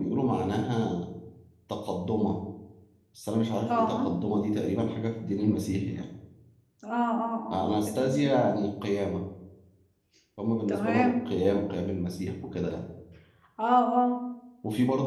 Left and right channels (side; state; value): both; identical; correlation 1.00